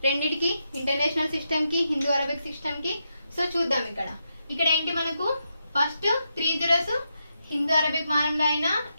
రెండిటికి, ఇంటర్నేషనల్ సిస్టమ్ కి, హిందూ అరబిక్ సిస్టమ్ కి. సో చూద్దాం ఇక్కడ ఏంటి మనకు ఫస్ట్ 3 zeros హిందూ అరబిక్ మానంలో అయినా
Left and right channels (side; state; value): both; inverted; correlation -0.84